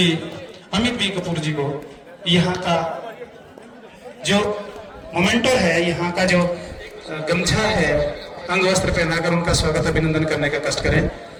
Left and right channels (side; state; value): both; identical; correlation 1.00